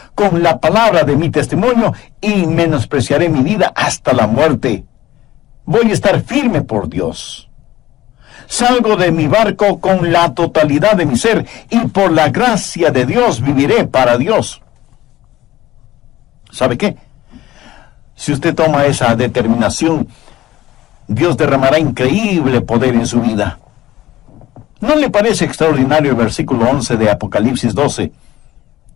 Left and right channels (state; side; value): quieter; right; 15.2 dB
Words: con la palabra de mi testimonio, y menospreciaré mi vida hasta la muerte. Voy a estar firme por Dios. Salgo de mi barco con la totalidad de mi ser, y por la gracia de Dios viviré para Dios. ¿Sabe qué? Si usted toma esa determinación, Dios derramará increíble poder en su vida. ¿No le parece extraordinario el versículo 11 de Apocalipsis 12?